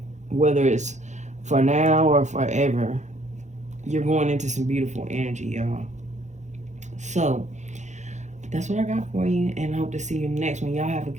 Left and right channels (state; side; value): late; left; 0.34 ms